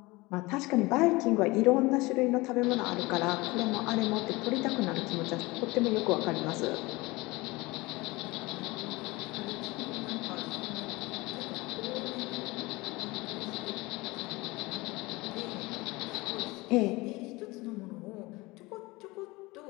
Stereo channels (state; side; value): quieter; right; 22.4 dB